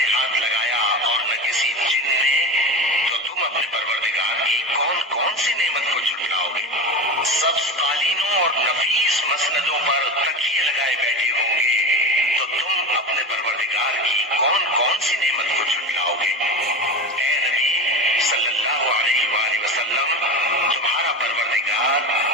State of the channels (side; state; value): both; normal; correlation 0.25